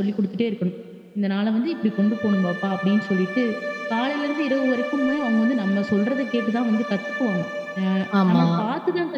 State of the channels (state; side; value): identical; both; correlation 1.00